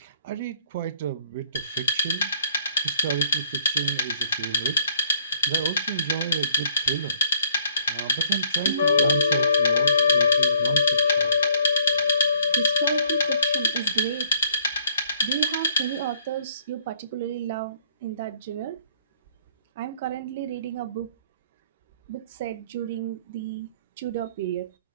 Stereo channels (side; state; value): both; inverted; correlation -0.62